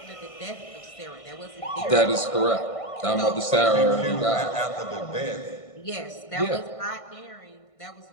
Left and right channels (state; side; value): late; right; 1.5 ms